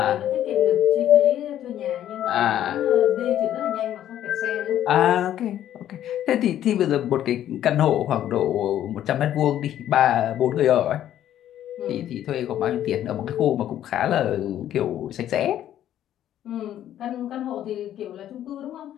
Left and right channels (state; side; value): quieter; right; 11.5 dB